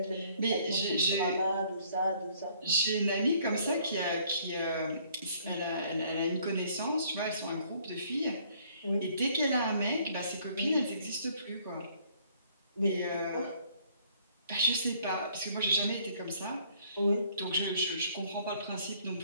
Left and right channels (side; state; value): both; inverted; correlation -0.62